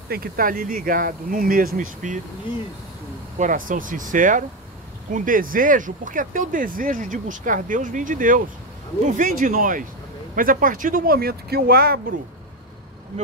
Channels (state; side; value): normal; both; correlation 0.11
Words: Tem que estar ali ligado, no mesmo espírito, Isso. coração sincero, com desejo, porque até o desejo de buscar Deus vem de Deus, não vem de nós. Mas a partir do momento que eu abro o